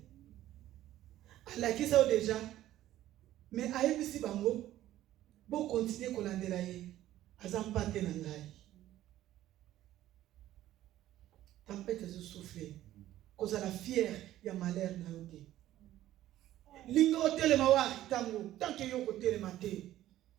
ala kisa déjà mais ayebisi bango bon continuer kolandela ye azampate na ngai tempête zo souffler cause la fière ya malheur na yote linga hôtel mawa tango tant que yoko tele maté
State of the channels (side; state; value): left; quieter; 13.8 dB